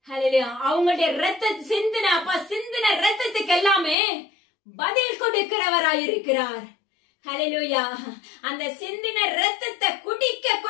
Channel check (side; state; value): right; drops out; at 4.0 s